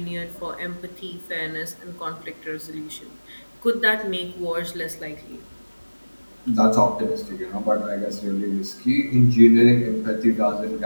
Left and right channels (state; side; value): inverted; both; correlation -1.00